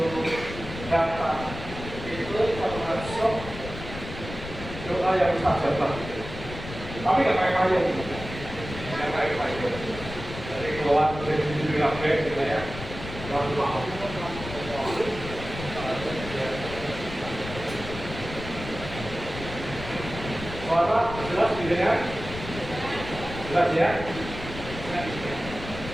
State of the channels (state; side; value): noise; left; rumble, 10 dB below the sound